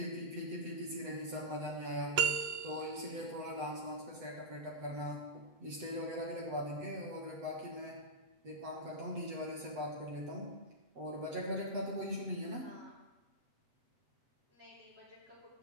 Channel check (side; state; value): left; late; 8.0 ms